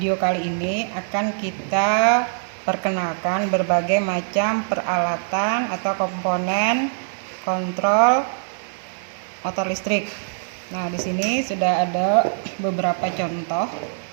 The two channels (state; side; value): silent; left; digital silence